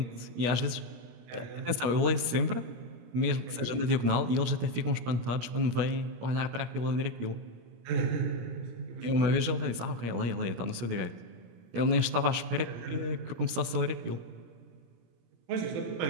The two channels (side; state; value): left; late; 17 ms